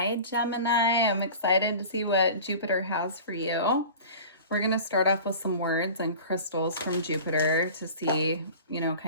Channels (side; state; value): both; inverted; correlation -0.38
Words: Gemini. I'm excited to see what Jupiter has for you. We're going to start off with some words and crystals from Jupiter to see, you know,